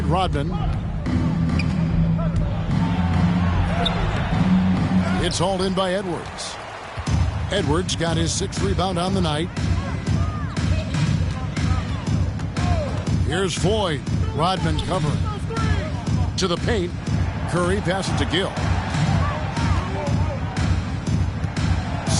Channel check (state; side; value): identical; both; correlation 1.00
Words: Rodman. It's hauled in by Edwards. Edwards got his 6th rebound on the night. Here's Floyd. Rodman covering. To the paint. Curry passes to Gill.